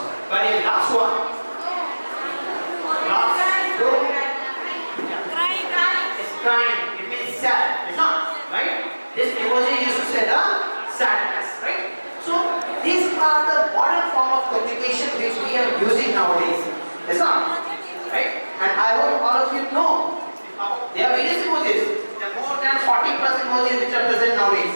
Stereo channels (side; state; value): both; inverted; correlation -1.00